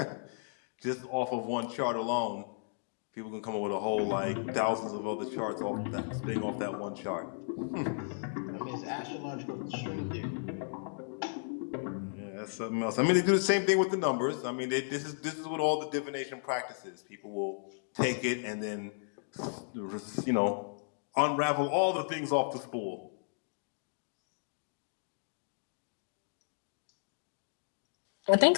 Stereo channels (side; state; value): right; silent; digital silence